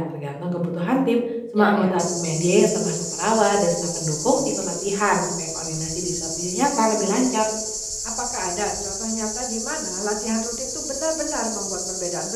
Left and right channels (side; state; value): both; identical; correlation 1.00